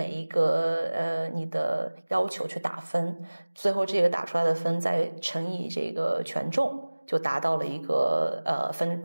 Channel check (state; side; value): inverted; both; correlation -1.00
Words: 一个你的要求去打分，最后这个打出来的分再乘以这个权重，就达到了一个